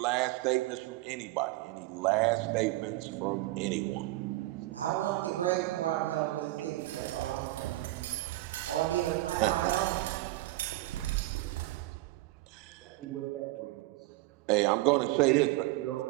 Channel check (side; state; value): left; quieter; 18.3 dB